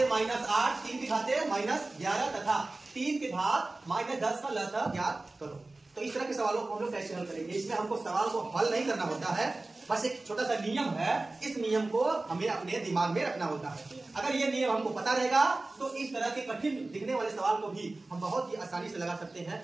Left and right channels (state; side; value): quieter; left; 3.1 dB